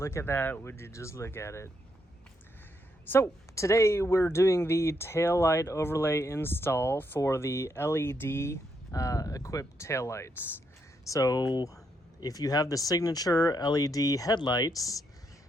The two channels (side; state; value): both; normal; correlation 0.78